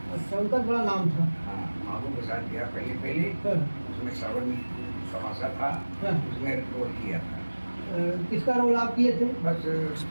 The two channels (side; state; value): both; inverted; correlation -1.00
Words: अच्छा, उनका बड़ा नाम था। हाँ, महबूब के साथ गया पहले। उसमें श्रवण समासा था, उसमें रोल किया था। किसका रोल आप किए थे? बस